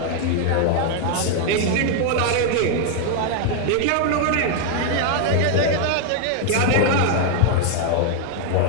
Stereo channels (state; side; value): different; both; correlation 0.00